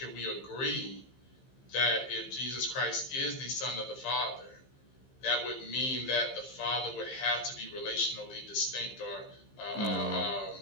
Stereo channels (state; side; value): late; right; 15 ms